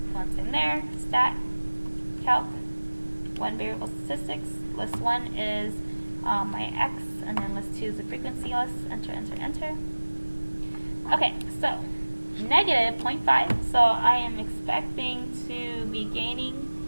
once in there, stat, calc, 1 variable statistics, list 1 is my x, and then list 2 is the frequency list, enter, enter, enter. Okay, so negative 0.5, so I am expecting to be gaining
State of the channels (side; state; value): both; inverted; correlation -1.00